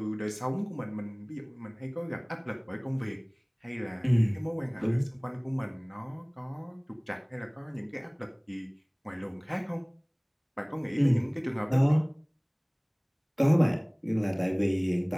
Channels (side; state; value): both; identical; correlation 1.00